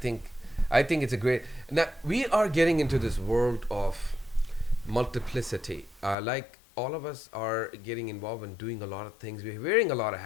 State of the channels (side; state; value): right; drops out; at 6.2 s